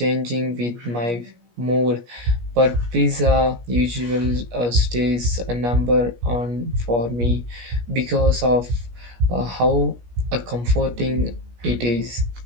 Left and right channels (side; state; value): left; late; 17 ms